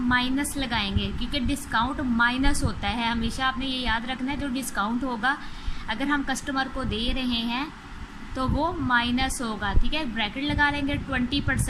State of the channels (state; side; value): identical; both; correlation 1.00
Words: लगाएंगे क्योंकि डिस्काउंट माइनस होता है। हमेशा आपने ये याद रखना है, जो डिस्काउंट होगा अगर हम कस्टमर को दे रहे हैं तो वो माइनस होगा, ठीक है। ब्रैकेट लगा लेंगे